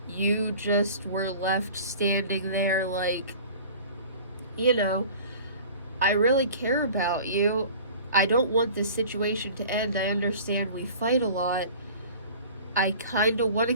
you just were left standing there like, I really care about you. I don't want this situation to end. I understand we fight a lot. I kind of want to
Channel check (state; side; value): inverted; both; correlation -0.43